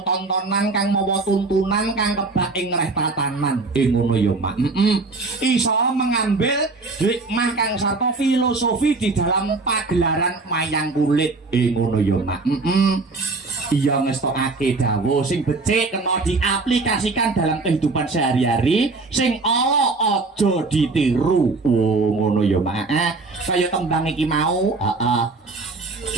kang mawa tuntunan kang kebak ing reh tatanan. Ngono ya, Mak. Iso mengambil hikmah kang sarta filosofi di dalam pagelaran wayang kulit. Ngono ya, Mak. Iya ngestokake dawuh sing becik kena diaplikasikan dalam kehidupan sehari-hari, sing ala aja ditiru. Oh ngono ya, Mak. Kaya tembang iki mau, heeh.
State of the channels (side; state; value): left; quieter; 3.7 dB